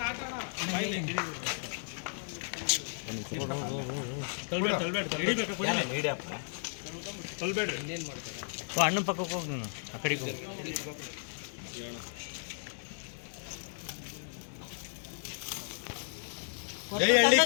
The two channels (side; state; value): right; silent; 55 dB below the other